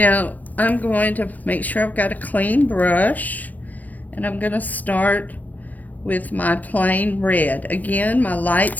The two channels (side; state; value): right; late; 0.081 ms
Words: I'm going to make sure I've got a clean brush, and I'm going to start with my plain red. Again, my light